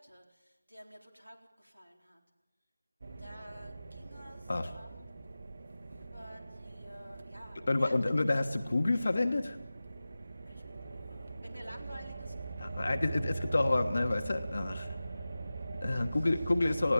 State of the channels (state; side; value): inverted; both; correlation -0.97